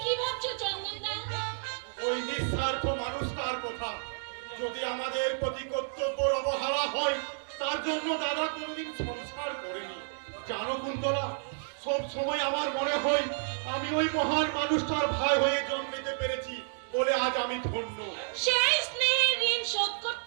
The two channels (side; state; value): left; silent; digital silence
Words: কি ভাবছো চন্দনদা? ওই নিঃস্বার্থ মানুষটার কথা যদি আমাদের প্রতি কর্তব্যের অবহেলা হয়, তার জন্য দাদা কোনদিন সংসার করেনি। জানো কুন্তলা, সব সময় আমার মনে হয় আমি ওই মহান মানুষটার ভাই হয়ে জন্ম নিতে পেরেছি, বলে আজ আমি ধন্য। সেই স্নেহের ঋণ শোধ